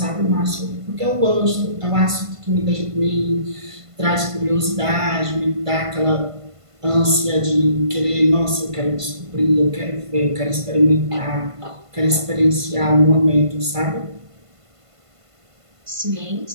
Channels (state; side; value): late; left; 1.5 ms